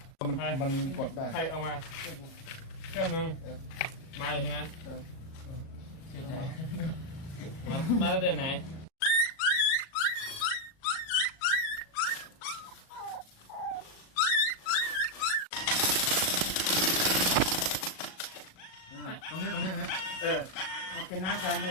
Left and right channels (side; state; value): right; late; 37 ms